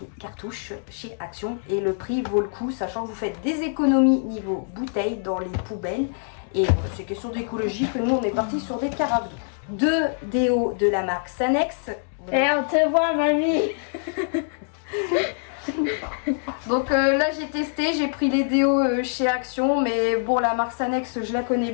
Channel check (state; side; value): silent; right; 62 dB below the other